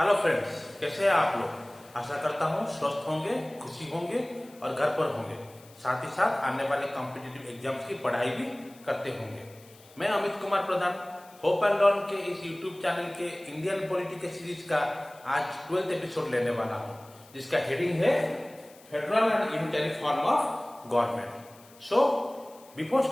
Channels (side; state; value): left; noise; hiss, 25 dB below the sound